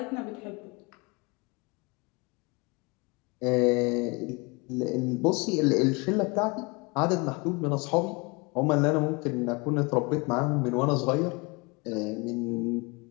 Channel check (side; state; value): right; quieter; 27.5 dB